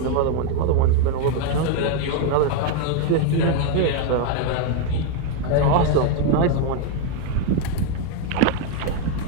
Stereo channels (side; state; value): both; different; correlation 0.01